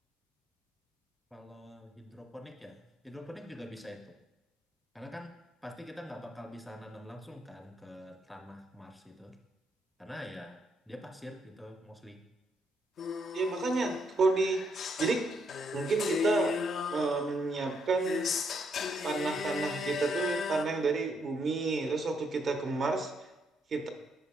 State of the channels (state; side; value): normal; both; correlation 0.76